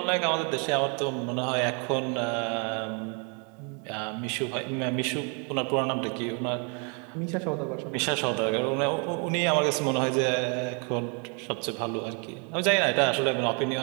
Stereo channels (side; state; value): left; quieter; 36.8 dB